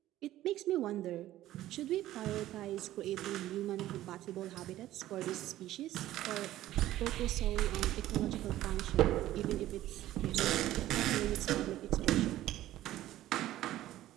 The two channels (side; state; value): left; quieter; 14.3 dB